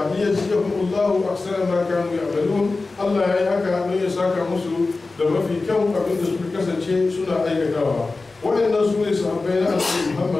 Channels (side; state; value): right; quieter; 3.6 dB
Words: Liyajziyahumullahu ahsana ma kanu ya'malun, Allah ya yi haka don ya saka musu da mafi kyau abin da suka kasance suna aikatawa. Waɗannan su ne sahabbai na Annabi